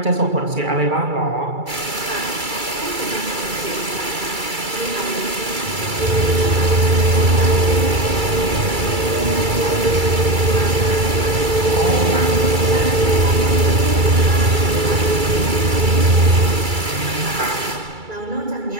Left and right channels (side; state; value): left; late; 2.3 ms